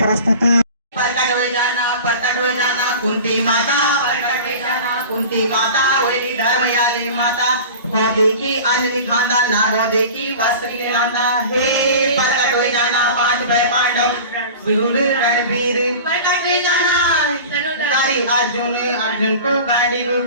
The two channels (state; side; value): inverted; both; correlation -0.37